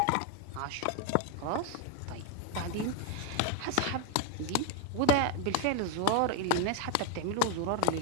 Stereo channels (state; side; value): different; both; correlation 0.01